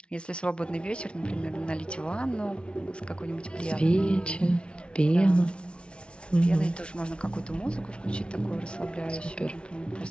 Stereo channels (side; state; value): right; late; 0.058 ms